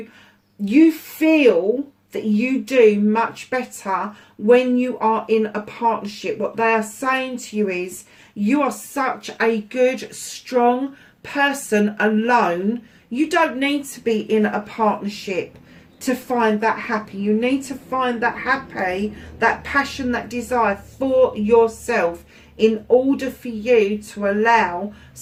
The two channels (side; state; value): both; identical; correlation 1.00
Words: feel that you do much better when you are in a partnership. What they are saying to you is, you are such a good, strong person alone. You don't need to be in a partnership to find that happy. You need to find that happy, that passion, that desire for yourself in order for you to allow